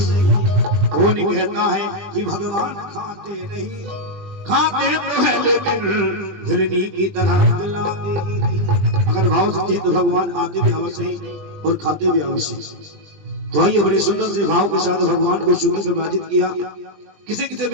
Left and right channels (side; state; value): left; late; 20 ms